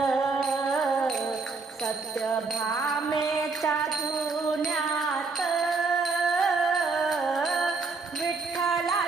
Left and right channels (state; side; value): quieter; left; 4.3 dB